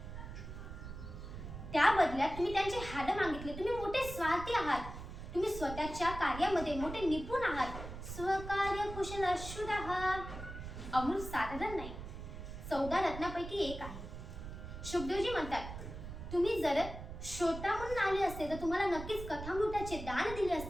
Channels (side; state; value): right; noise; rumble, 10 dB below the sound